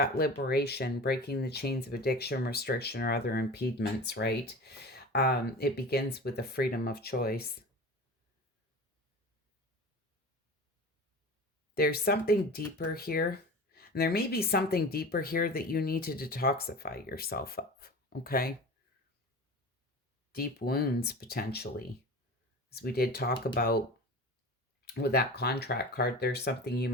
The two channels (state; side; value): normal; both; correlation 0.34